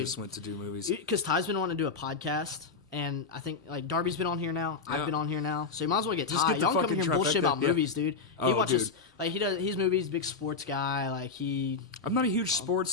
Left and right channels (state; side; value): quieter; right; 4.8 dB